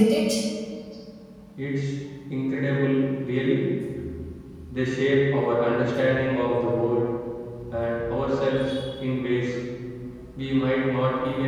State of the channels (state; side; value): identical; both; correlation 1.00